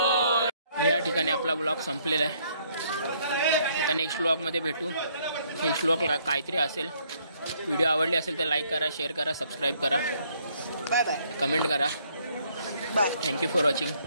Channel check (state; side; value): inverted; both; correlation -0.67